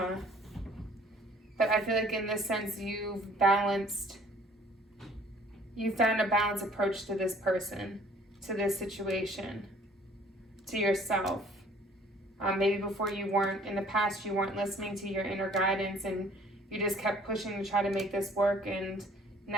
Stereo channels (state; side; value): normal; both; correlation 0.56